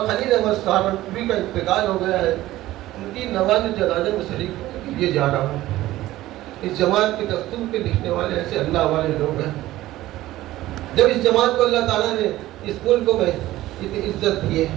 خلیل احمد سہارنپوری کا انتقال ہو گیا ہے، ان کی نماز جنازہ میں شریک ہونے کے لیے جا رہا ہوں. اس جماعت کے دستور کے لکھنے والے ایسے اللہ والے لوگ ہیں. جب اس جماعت کو اللہ تعالیٰ نے اس ملک میں اتنی عزت دی ہے،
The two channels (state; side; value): quieter; left; 15.9 dB